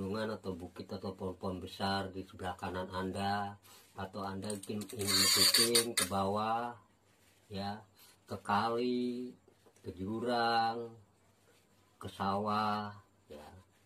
atau bukit atau pohon-pohon besar di sebelah kanan Anda, atau Anda ingin syuting ke bawah, ya, ke kali, ke jurang, ke sawah, ya.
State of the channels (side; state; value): both; identical; correlation 1.00